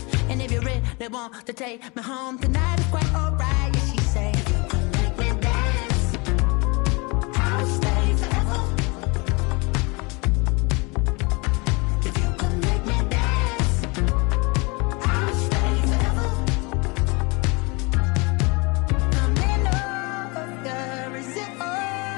and if you really want to take me home tonight, it's quite alright. Yeah, she say, you can make me dance, I'll stay forever.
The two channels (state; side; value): quieter; right; 28.2 dB